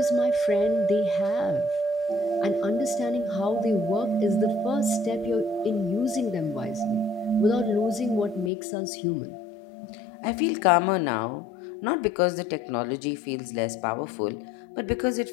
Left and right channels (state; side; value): drops out; right; at 8.5 s